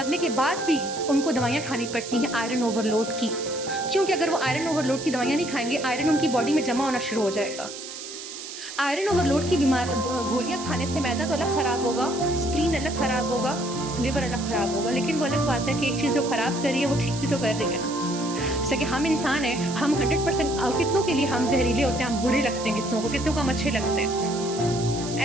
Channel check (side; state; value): right; noise; hiss, 10 dB below the sound